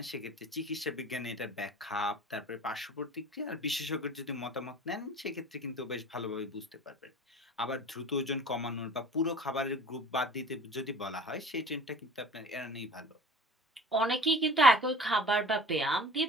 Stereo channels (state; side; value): normal; both; correlation 0.42